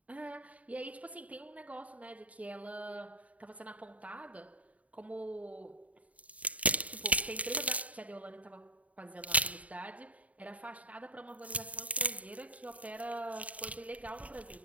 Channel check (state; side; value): late; left; 0.069 ms